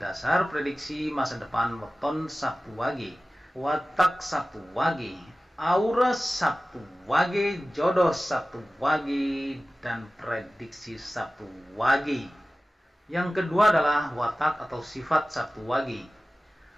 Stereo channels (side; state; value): both; normal; correlation 0.96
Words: prediksi masa depan weton Sabtu Wage, watak Sabtu Wage, aura Sabtu Wage, jodoh Sabtu Wage, dan prediksi Sabtu Wage. Yang kedua adalah watak atau sifat Sabtu Wage.